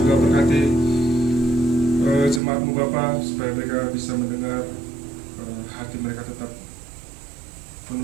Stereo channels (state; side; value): drops out; left; at 2.4 s